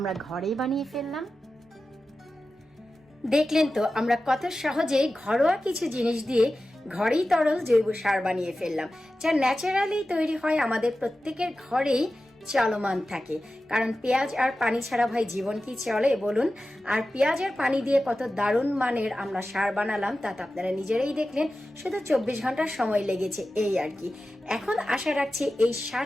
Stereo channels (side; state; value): both; normal; correlation 0.94